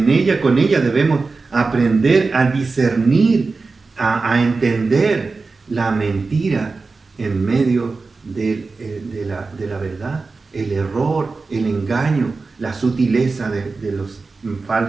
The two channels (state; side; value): quieter; left; 4.0 dB